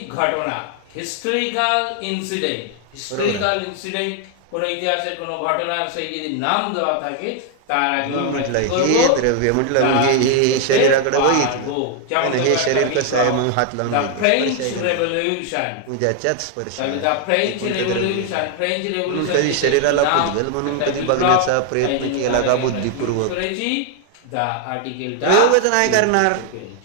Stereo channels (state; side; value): different; both; correlation 0.00